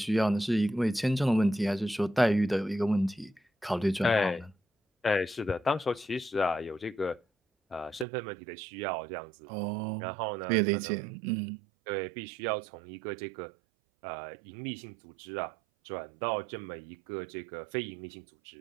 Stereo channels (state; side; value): drops out; left; at 8.1 s